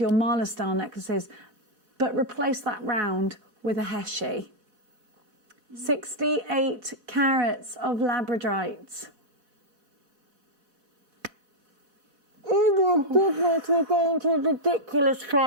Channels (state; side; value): late; left; 4.7 ms